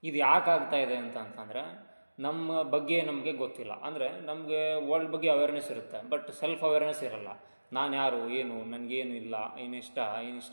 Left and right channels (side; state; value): both; inverted; correlation -1.00